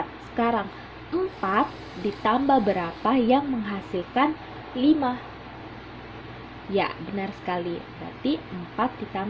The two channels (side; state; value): both; identical; correlation 1.00